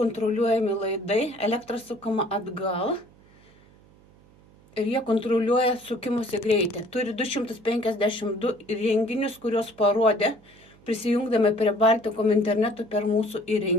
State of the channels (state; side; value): noise; right; hum, 27 dB below the sound